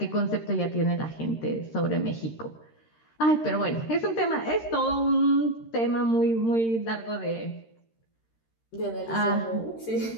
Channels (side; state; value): right; late; 13 ms